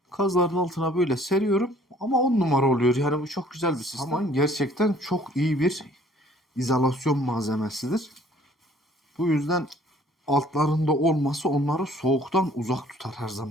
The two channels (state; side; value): normal; both; correlation 0.57